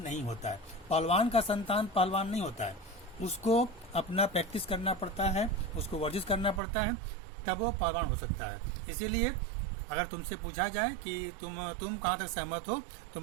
होता है। पहलवान का संतान पहलवान नहीं होता है, उसको अपना प्रैक्टिस करना पड़ता है, उसको वर्जिश करना पड़ता है, तब वो पहलवान हो सकता है। इसीलिए अगर तुमसे पूछा जाए कि तुम कहाँ तक सहमत हो, तो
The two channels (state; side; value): drops out; left; at 6.6 s